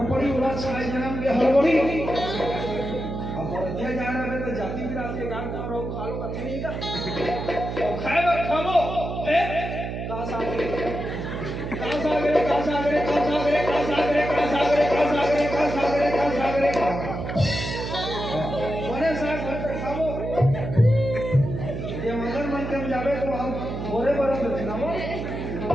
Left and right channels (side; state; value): right; noise; hum, 5 dB below the sound